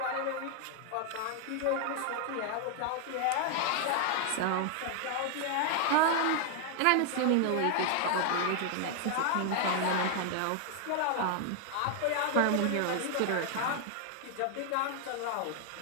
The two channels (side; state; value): both; different; correlation 0.00